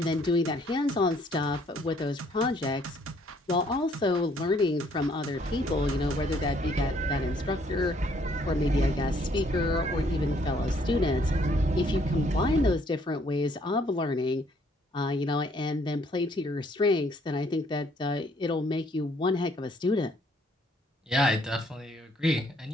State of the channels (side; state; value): both; normal; correlation 0.65